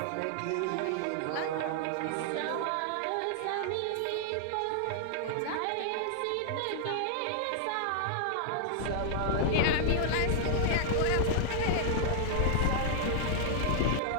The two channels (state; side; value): different; both; correlation -0.01